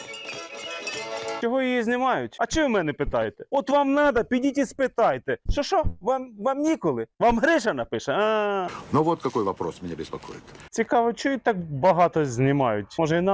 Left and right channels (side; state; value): both; identical; correlation 1.00